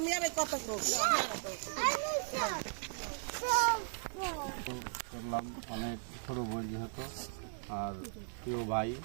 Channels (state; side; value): silent; left; digital silence